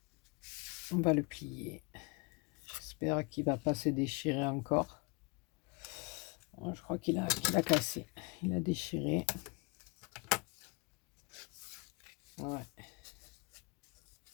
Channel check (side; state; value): right; quieter; 29.3 dB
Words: On va le plier. J'espère qu'il va pas se déchirer encore. Je crois qu'il a cassé. Il a déchiré. Ouais.